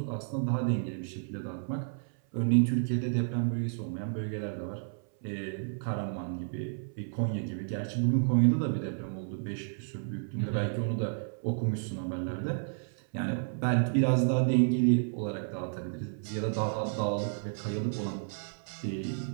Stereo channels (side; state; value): left; silent; 57 dB below the other